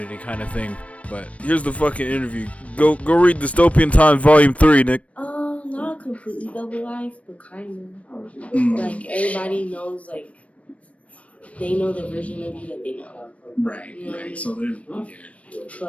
kind of thing. But here's the fucking interview. Go read Dystopian Time Volume 3, Nick. Not completely double life, but kind of. Like everybody knows, like they know the version of you that they know. Right. You know what I mean? So they're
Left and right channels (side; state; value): right; late; 0.064 ms